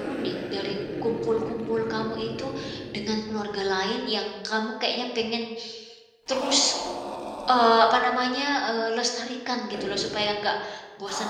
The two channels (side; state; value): both; identical; correlation 1.00